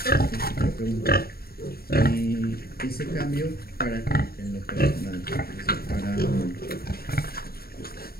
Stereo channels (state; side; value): late; right; 0.44 ms